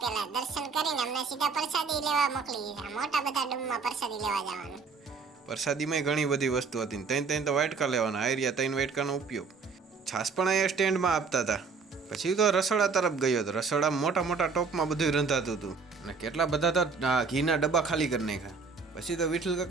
પહેલા દર્શન કરીને અમને સીધા પ્રસાદી લેવા મોકલી દીધા મોટા બધા ડૂમમાં પ્રસાદી લેવા જવાનું પ્રસાદીમાં ઘણી બધી વસ્તુ હતી ત્રણ તો વાટકા લેવાના આયરિયા 3 વાટકાનો ઉપયોગ છાસ પણ અહીંયા સ્ટેન્ડમાં આપતા હતા પછી તો રસોડા તરફ ગયો હતો રસોડા મોટા મોટા ટોપમાં બધું રંધાતું હતું અને કેટલા બધા તો ઘીના ડબ્બા ખાલી કરી નાખ્યા પછી તો વિઠ્ઠલ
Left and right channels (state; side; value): quieter; left; 4.9 dB